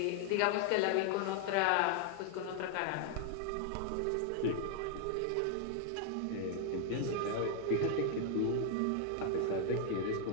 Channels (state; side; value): different; both; correlation 0.00